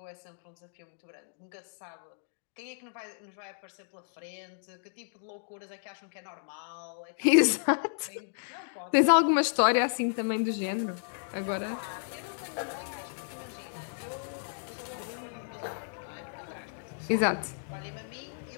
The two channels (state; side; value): silent; right; digital silence